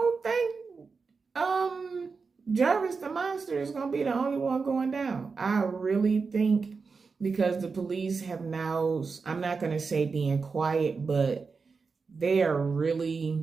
think Jarvis the Monster is going to be the only one going down. I really think, because the police have now, I'm not going to say being quiet, but they are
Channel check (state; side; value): quieter; left; 4.8 dB